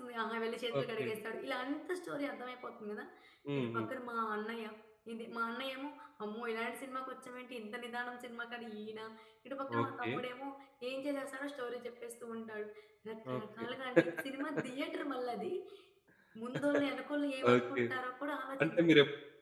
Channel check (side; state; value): both; identical; correlation 1.00